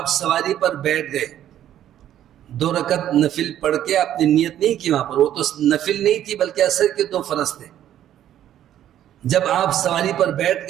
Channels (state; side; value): quieter; left; 11.4 dB